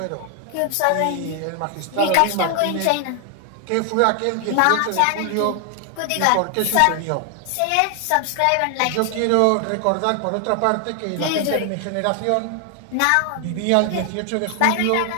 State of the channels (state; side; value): different; both; correlation 0.00